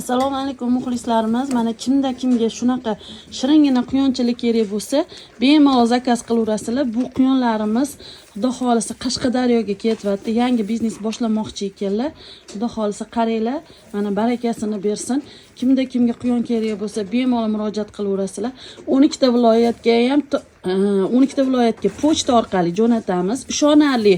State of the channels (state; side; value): identical; both; correlation 1.00